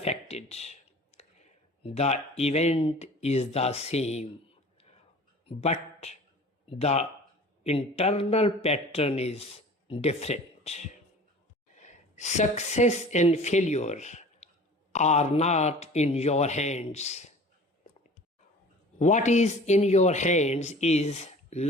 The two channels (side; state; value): both; normal; correlation 0.43